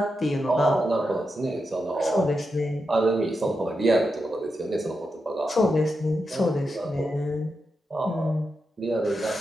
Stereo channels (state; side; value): normal; both; correlation 0.87